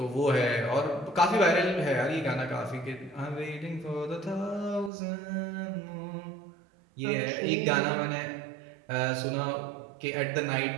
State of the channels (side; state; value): left; drops out; at 4.9 s